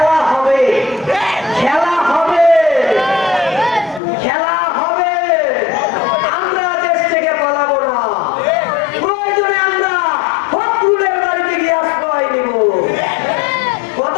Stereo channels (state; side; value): drops out; right; at 4.0 s